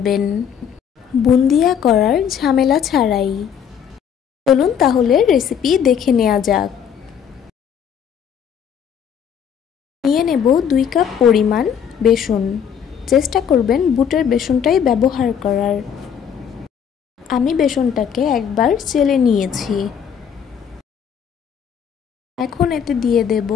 বুন্দিয়া করার ঝামেলা ছাড়াই। চলুন তাহলে রেসিপি দেখে নেওয়া যাক। নিয়ে নেব 2 কাপ পরিমাণ বেসন। চেষ্টা করবেন বুটের বেসনটাই ব্যবহার করার। আমি বেসনটাকে একবার চেলে নিয়েছি। এখন এতে দিয়ে দেব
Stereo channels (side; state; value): right; quieter; 8.0 dB